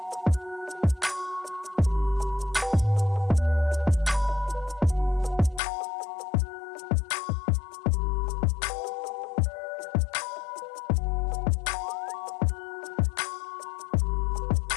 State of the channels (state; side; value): drops out; right; at 5.6 s